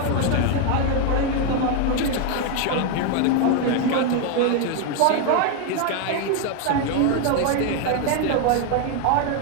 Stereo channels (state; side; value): different; both; correlation 0.01